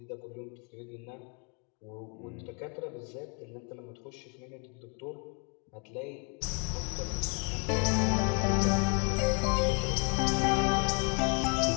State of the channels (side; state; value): right; quieter; 36.4 dB